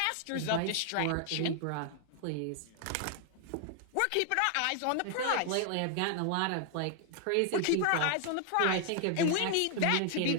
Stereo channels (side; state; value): both; different; correlation 0.00